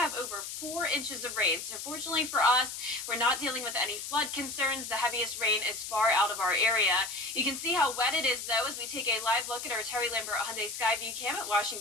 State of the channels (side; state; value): left; noise; hiss, 7 dB below the sound